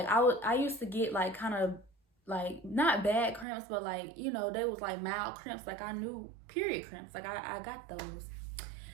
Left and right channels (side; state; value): left; drops out; at 3.5 s